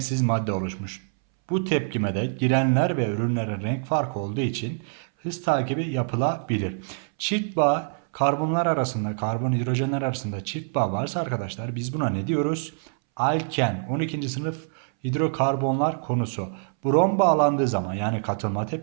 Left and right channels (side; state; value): left; silent; 62 dB below the other